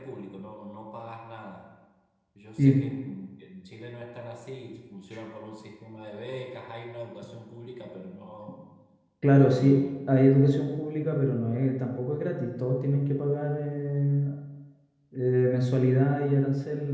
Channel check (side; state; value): both; identical; correlation 1.00